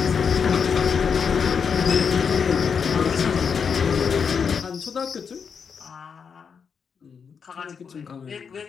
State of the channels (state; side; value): quieter; right; 6.4 dB